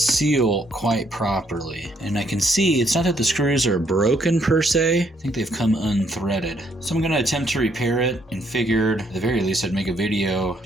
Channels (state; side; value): normal; both; correlation 0.70